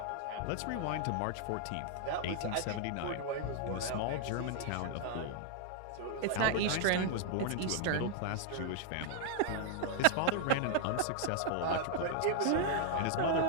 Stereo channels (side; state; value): both; different; correlation 0.00